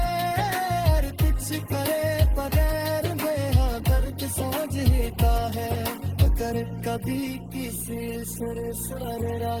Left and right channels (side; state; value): both; identical; correlation 1.00